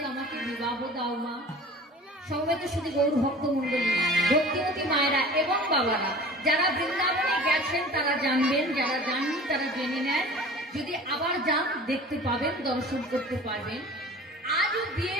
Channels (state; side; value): normal; both; correlation 0.42